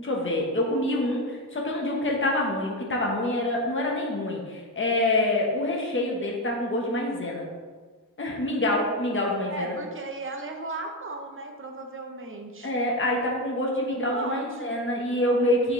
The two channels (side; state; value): both; normal; correlation 0.13